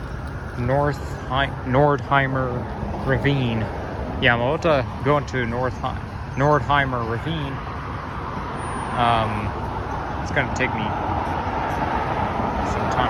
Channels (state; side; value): identical; both; correlation 1.00